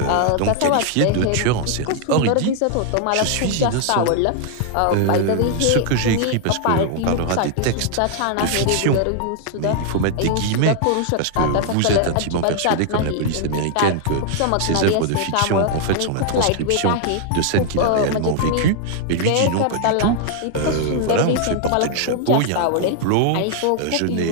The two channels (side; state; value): both; different; correlation 0.00